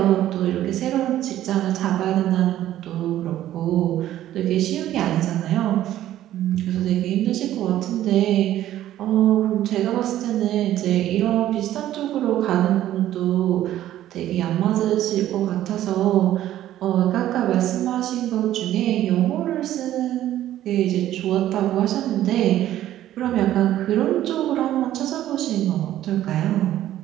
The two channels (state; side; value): quieter; left; 13.0 dB